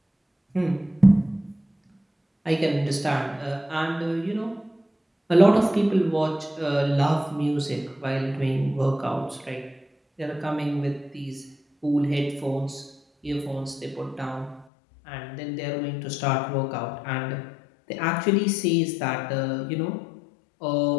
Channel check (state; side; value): drops out; right; at 14.7 s